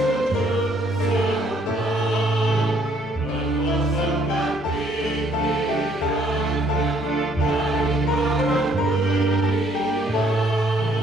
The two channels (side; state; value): both; normal; correlation 0.65